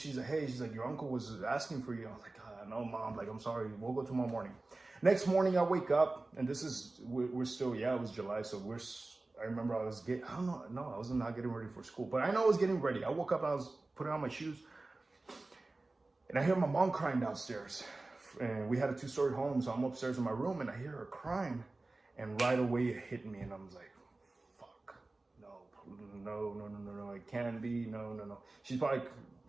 like, hey, she's like, your uncle was asking for you. I was like, no, Mom, like, I'm sorry. We'll go tomorrow morning. Next morning, I wake up, and we're still, it was July. So I remember I was I was not getting ready for school, but I know I was getting ready. I woke up and I was putting on my shoes, and I hear my mom crying downstairs. And we had a 2-story home, so I'm upstairs in my room, and I hear her crying, and right away it hit me, and I was like, fuck, no, it can't be, no. She's probably,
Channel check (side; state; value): left; quieter; 3.1 dB